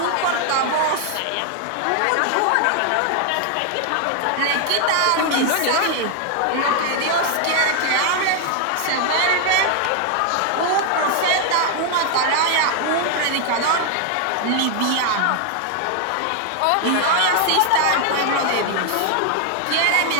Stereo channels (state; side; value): different; both; correlation 0.00